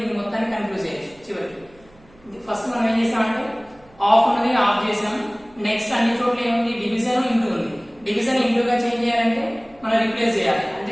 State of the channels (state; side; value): noise; right; hum, 28 dB below the sound